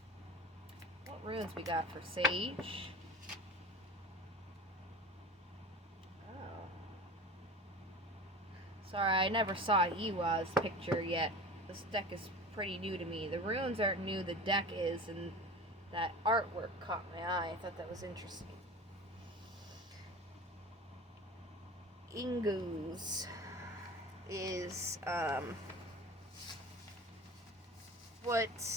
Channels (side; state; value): both; normal; correlation 0.34